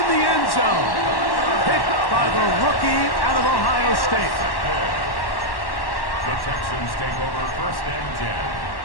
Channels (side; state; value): right; late; 1.1 ms